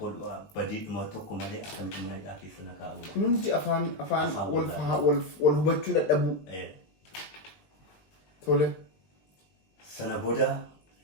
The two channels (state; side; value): late; right; 19 ms